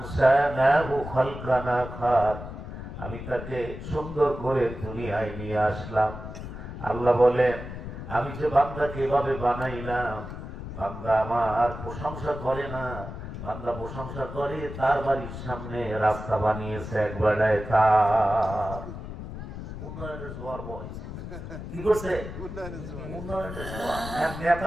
খালকান আখার, আমি তাকে সুন্দর করে দুনিয়ায় নিয়ে আসলাম। আল্লাহ বলেন আমি যে বান্দাকে এভাবে বানাইলাম, বান্দা আমার প্রশংসা করে না, বান্দা প্রশংসা করে তার বাড়ির সামনে রাস্তা বানিয়েছে একবারে, তার উন্নয়নের জোয়ার বইছে। কি করছে? উন্নয়নের জোয়ার। এক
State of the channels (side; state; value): left; noise; rumble, 9 dB below the sound